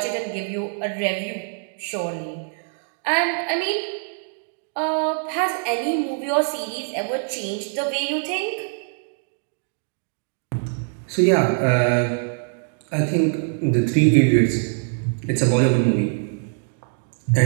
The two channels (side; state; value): left; silent; digital silence